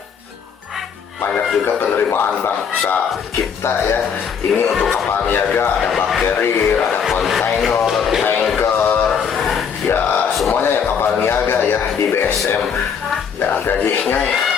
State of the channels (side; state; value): right; quieter; 7.0 dB